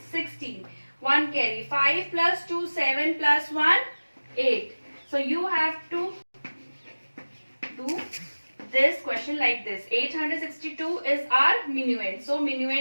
16. 1 carry. 5 plus 2, 7 plus 1, 8. So you have to do this question like this. 862 is our minuend. So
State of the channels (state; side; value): inverted; both; correlation -1.00